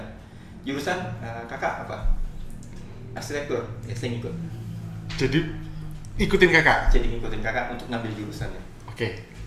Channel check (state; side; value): identical; both; correlation 1.00